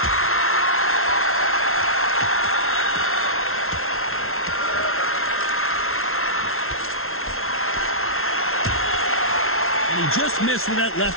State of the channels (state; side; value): late; right; 0.62 ms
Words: And he just missed with that